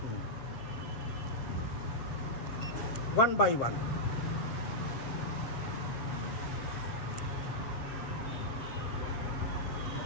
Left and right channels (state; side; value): late; right; 7.4 ms